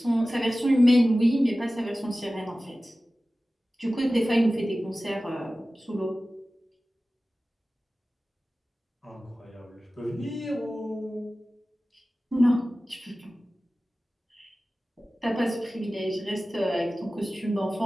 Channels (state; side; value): normal; both; correlation 0.96